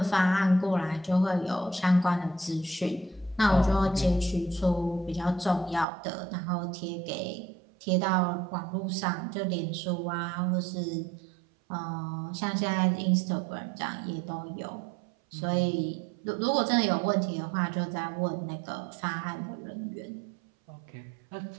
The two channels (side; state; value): left; drops out; at 5.9 s